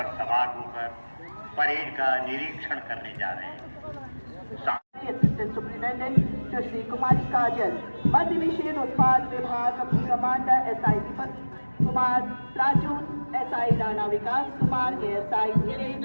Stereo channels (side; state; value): both; inverted; correlation -1.00